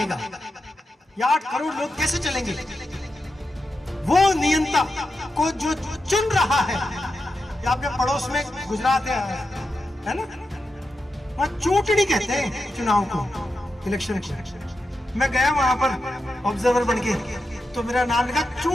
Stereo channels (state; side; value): normal; both; correlation 0.88